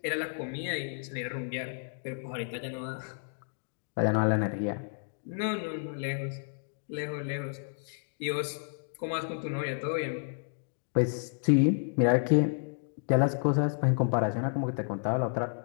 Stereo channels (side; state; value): right; silent; digital silence